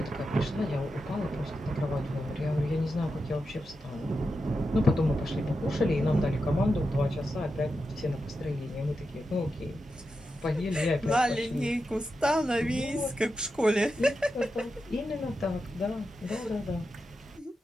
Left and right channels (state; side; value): normal; both; correlation 0.89